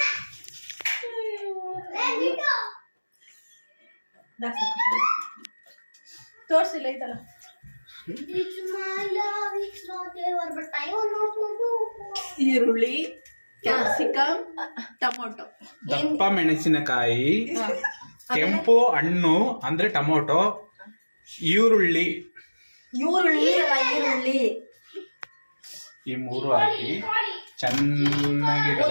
ತೋರ್ಸಿಲ್ಲ ಐತಲ್ಲ. ಈರುಳ್ಳಿ, ಕ್ಯಾಪ್ಸಿಕಮ್, ಟೊಮೊಟೊ, ದಪ್ಪ ಮೆಣಸಿನಕಾಯಿ, ಕೆಂಪು ಹಣ್ಣು ಅಂದ್ರೆ ಟೊಮೊಟೊ, ಈರುಳ್ಳಿ ಈ ಮೂರು ಹಾಕಿ ಚೆನ್ನಾಗಿ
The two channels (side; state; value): both; inverted; correlation -1.00